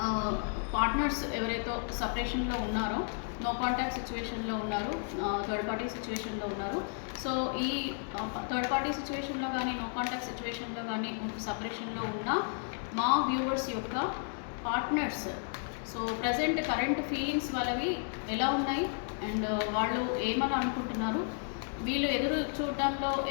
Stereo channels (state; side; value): silent; right; 56 dB below the other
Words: పార్ట్నర్స్ ఎవరైతే సపరేషన్లో ఉన్నారో, నో కాంటాక్ట్ సిచ్యువేషన్లో ఉన్నారు, థర్డ్ పార్టీ సిచ్యువేషన్లో ఉన్నారు. సో ఈ థర్డ్ పార్టీ సిచ్యువేషన్లో కానీ నో కాంటాక్ట్ సిచ్యువేషన్లో కానీ సపరేషన్లో ఉన్న మా వ్యూవర్స్ యొక్క partners so present current feelings వాళ్ళవి ఎలా ఉన్నాయి అండ్ వాళ్ళు ఏమని అనుకుంటున్నారు, వీళ్ళు ఎదురు చూడడంలో